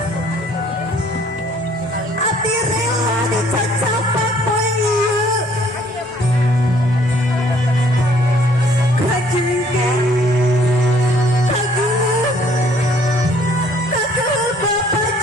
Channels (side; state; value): both; normal; correlation 0.60